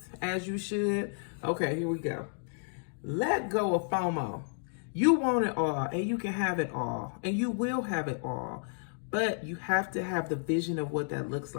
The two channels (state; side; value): silent; right; 57 dB below the other